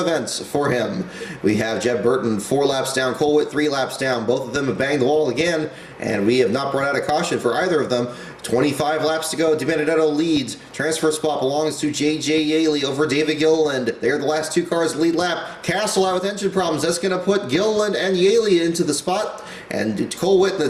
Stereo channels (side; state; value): both; identical; correlation 1.00